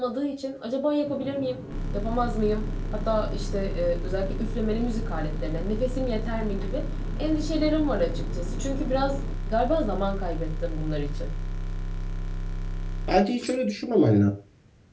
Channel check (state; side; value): identical; both; correlation 1.00